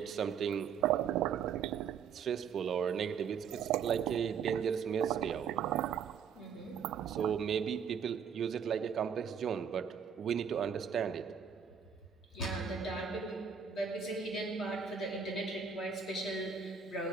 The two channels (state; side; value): quieter; left; 7.0 dB